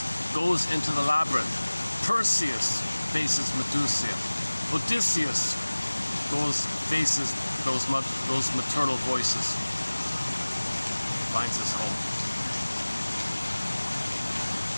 goes into the labyrinth. Perseus faces Medusa. Odysseus faces those maternal voices. Finds his home.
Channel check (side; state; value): both; inverted; correlation -1.00